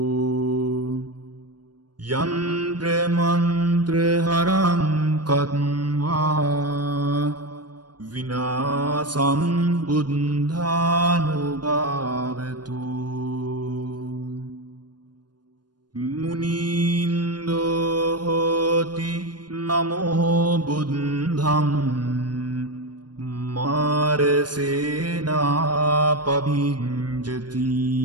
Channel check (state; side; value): late; left; 0.70 ms